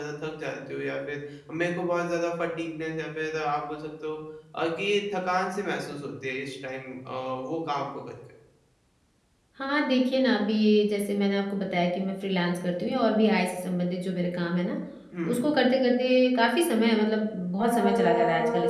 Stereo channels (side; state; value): both; identical; correlation 1.00